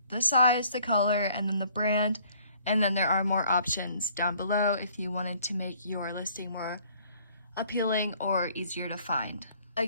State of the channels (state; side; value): inverted; both; correlation -0.59